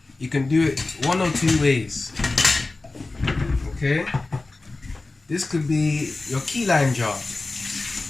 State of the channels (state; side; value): quieter; right; 3.3 dB